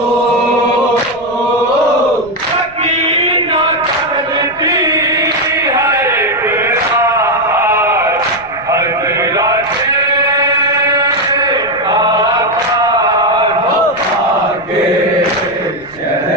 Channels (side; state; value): left; noise; rumble, 25 dB below the sound